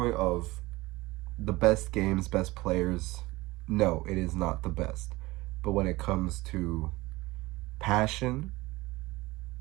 of the best games, best players, no, it is not the best. But when it comes to passion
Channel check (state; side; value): quieter; left; 20.6 dB